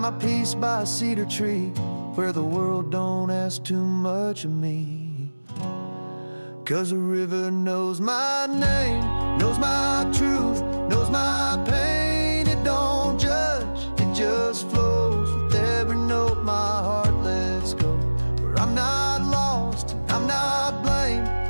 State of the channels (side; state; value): both; inverted; correlation -1.00